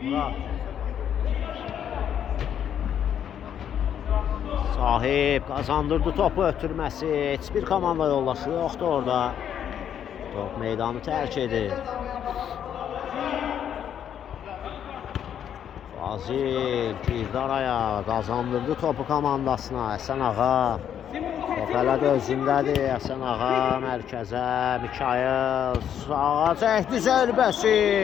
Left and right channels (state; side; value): quieter; right; 9.3 dB